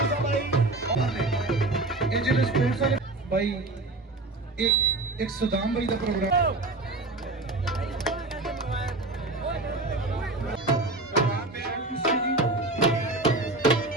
भाई इंजीनियर स्पोर्ट्स वाले भाई एक सुदाम भाई का प्रोग्राम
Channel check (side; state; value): left; quieter; 3.0 dB